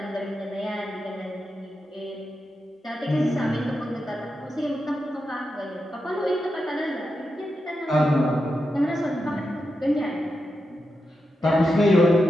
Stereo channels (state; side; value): normal; both; correlation 0.88